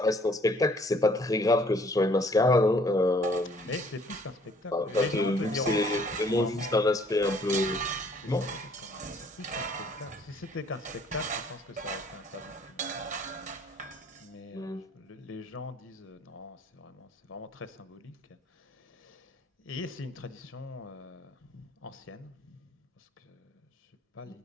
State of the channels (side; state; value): both; normal; correlation 0.60